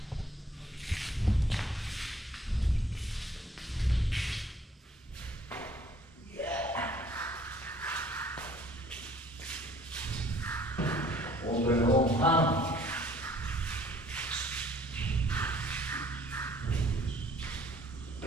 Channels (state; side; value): normal; both; correlation 0.57